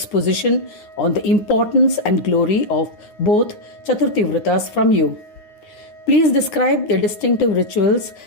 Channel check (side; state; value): right; late; 9.6 ms